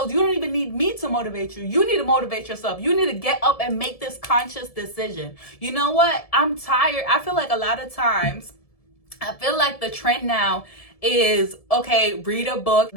You don't even need me to motivate you. You need to motivate yourself. You need to get up and make this conscious decision. You know what? I'm tired. I feel like a lot of times, I feel like the trend now is, okay, read a book.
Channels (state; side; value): late; right; 1.7 ms